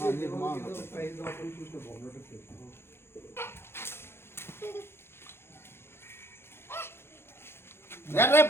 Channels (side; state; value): right; late; 0.12 ms